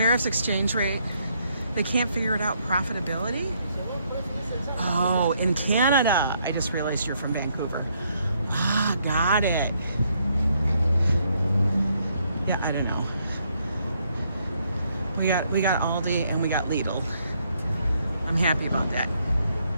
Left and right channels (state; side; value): inverted; both; correlation -0.72